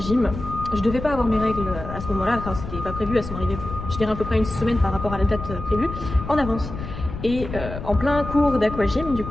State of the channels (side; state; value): left; noise; rumble, 9 dB below the sound